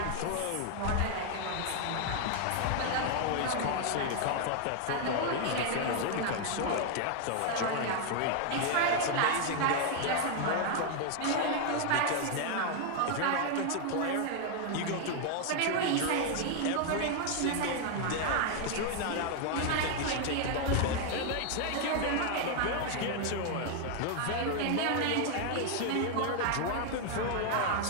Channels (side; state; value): both; different; correlation 0.00